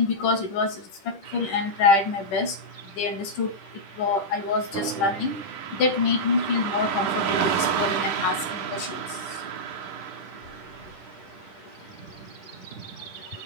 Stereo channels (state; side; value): late; right; 10 ms